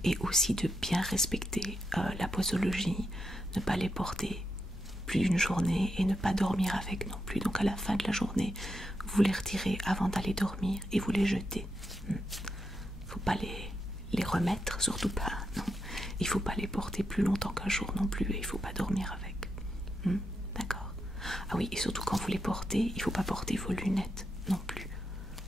Et aussi de bien respecter la posologie, ne pas les porter plus d'une journée et ne pas dormir avec non plus. Donc à la fin de la journée, vous les retirez avant d'aller dormir et vous les jetez. Faut pas les remettre, surtout pas, non. Il faut pas les porter plus longtemps qu'un jour non plus et il faut pas dormir avec. D'accord. Ah oui, et surtout quand vous les portez, il faut pas porter vos lunettes non plus.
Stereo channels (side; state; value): both; normal; correlation 0.84